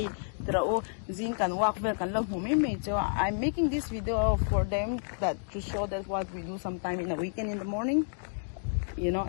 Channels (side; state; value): right; silent; digital silence